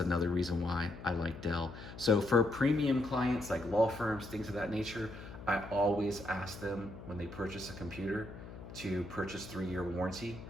reason why I like Dell. So for premium clients like law firms, things of that nature, I always ask them when they purchase a computer to purchase 3-year warranty.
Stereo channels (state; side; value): noise; left; hum, 13 dB below the sound